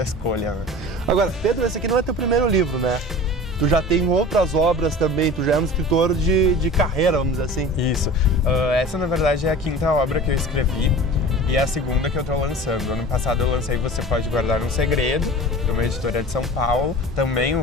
escolha, né? Agora, Pedro, esse aqui não é teu primeiro livro, né? Tu já tem outras obras também, tu já é um escritor de carreira, vamos dizer assim. Isso. Essa, na verdade, é a 5ª obra que eu escrevi e é a 2ª que eu estou lançando. Ano passado eu lancei Você Pode Guardar um Segredo, de uma editora de São Paulo, também um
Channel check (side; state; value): both; normal; correlation 0.38